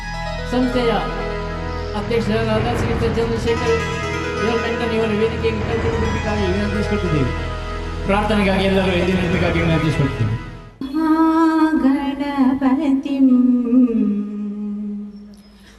ಸಂಸ್ಥೆಯ ಅಧ್ಯಕ್ಷರಾದ ಶ್ರೀಯುತ ಚಂದ್ರಶೇಖರ್ ಮೆಂಟನ್ ಇವರ ವೇದಿಕೆಗೆ ಕರೆದುಕೊಳ್ಳಬೇಕಾಗಿ ವಿನಂತಿಸಿಕೊಟ್ಟಿದ್ದೀವಿ. ಪ್ರಾರ್ಥನೆಗಾಗಿ ಎಲ್ಲರೂ ಎದ್ದು ನಿಲ್ಲಬೇಕಾಗಿ ವಿನಂತಿಸಿಕೊಳ್ತೀವಿ. ಮಹಾಗಣಪತಿಂ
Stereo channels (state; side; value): identical; both; correlation 1.00